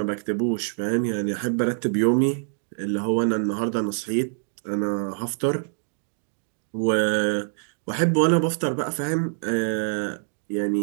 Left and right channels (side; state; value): left; silent; digital silence